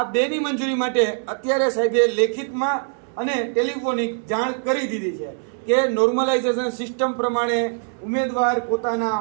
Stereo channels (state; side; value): silent; left; 58 dB below the other